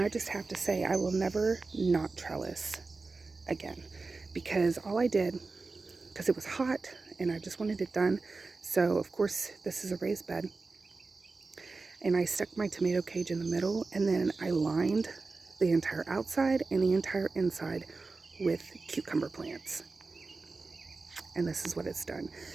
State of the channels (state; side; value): quieter; left; 3.9 dB